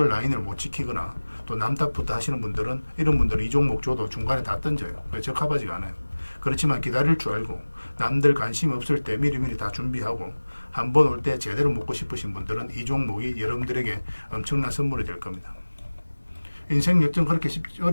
라인을 못 지키거나 또 남탓부터 하시는 분들은 이런 분들은 이 종목 줘도 중간에 다 던져요. 적합하지가 않아요. 그렇지만 기다릴 줄 알고 남들 관심 없을 때 미리미리 다 준비하고 한 번 올 때 제대로 먹고 싶으신 분들은 이 종목이 여러분들에게 엄청난 선물이 될 겁니다. 인생 역전 그렇게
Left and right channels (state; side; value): inverted; both; correlation -1.00